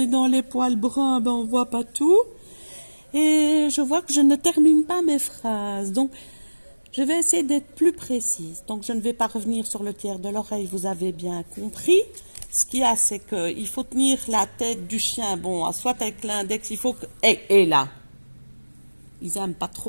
dans les poils bruns, ben on voit pas tout. Et je vois que je ne termine pas mes phrases. Donc, je vais essayer d'être plus précise. Donc, je ne vais pas revenir sur le tiers de l'oreille, vous avez bien compris. Ce qu'il y a, c'est qu'il faut tenir la tête du chien, bon, soit avec l'index, il faut que... Et là, ils aiment pas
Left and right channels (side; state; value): both; inverted; correlation -1.00